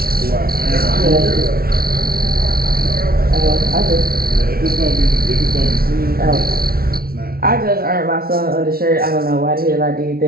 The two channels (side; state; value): left; late; 0.44 ms